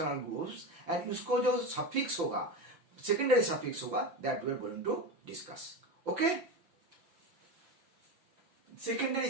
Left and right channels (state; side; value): late; left; 5.8 ms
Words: groups and उसको जो suffix होगा, secondary suffix होगा, that we are going to discuss. Okay, secondary